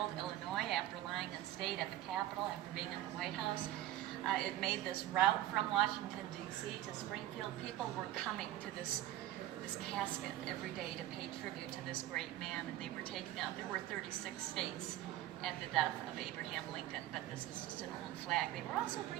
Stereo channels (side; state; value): left; quieter; 14.2 dB